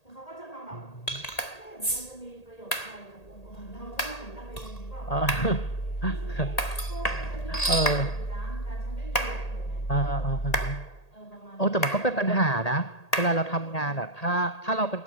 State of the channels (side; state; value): right; late; 1.8 ms